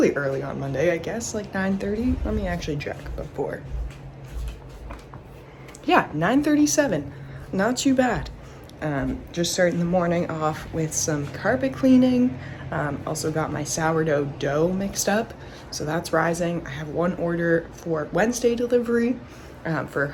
early on Monday, I guess, like 9:30. Let me actually check before. Yeah, 9:37. Not too bad. Just starting the morning off with some carpet cleaning. Also got my sourdough dough mixed up, so that's rising. I have one order for Wednesday delivery for a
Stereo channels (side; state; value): both; identical; correlation 1.00